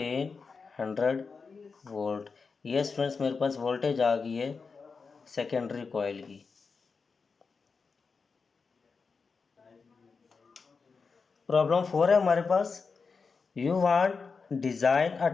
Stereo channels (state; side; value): quieter; right; 4.9 dB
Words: वोल्ट। ये स्टूडेंट्स मेरे पास वोल्टेज आ गई है सेकेंडरी कॉइल की। प्रॉब्लम 4 है हमारे पास, you want design a